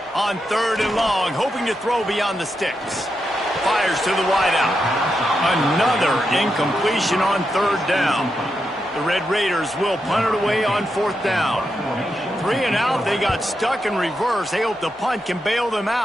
On 3rd and long, hoping to throw beyond the sticks. Fires to the wideout. Another incompletion on 3rd down. The Red Raiders will punt it away on 4th down. 3 and out, they got stuck in reverse. They hope the punt can bail them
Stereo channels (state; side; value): normal; both; correlation 0.85